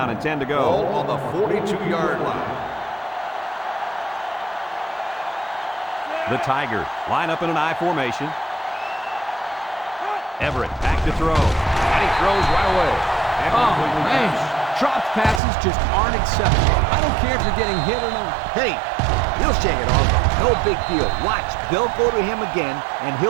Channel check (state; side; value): drops out; left; at 15.4 s